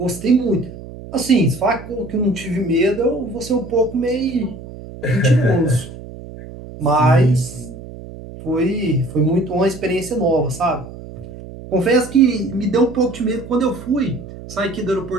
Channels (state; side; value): noise; right; hum, 14 dB below the sound